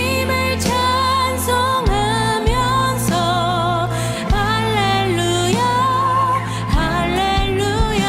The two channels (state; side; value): identical; both; correlation 1.00